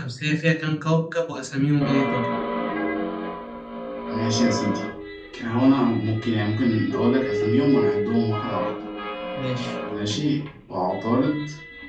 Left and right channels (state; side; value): identical; both; correlation 1.00